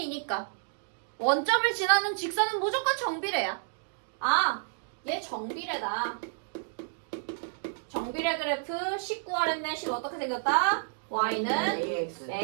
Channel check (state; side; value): silent; left; digital silence